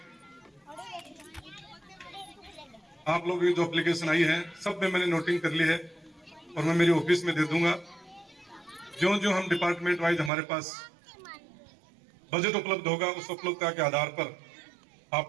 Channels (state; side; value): drops out; left; at 10.3 s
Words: आप लोगों की जो एप्लीकेशन आई है सब में मैंने नोटिंग कर ली है और मैं मेरी ऑफिस में दे दूंगा। जो जो हम डिपार्टमेंट वाइज हमारे पास बजट उपलब्ध होगा, उस उपलब्धता के आधार पर